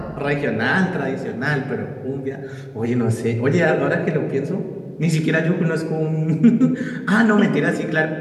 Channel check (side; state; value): both; identical; correlation 1.00